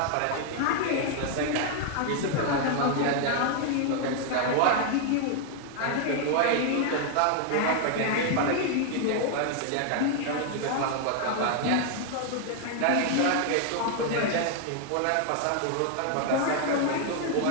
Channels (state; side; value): different; both; correlation 0.00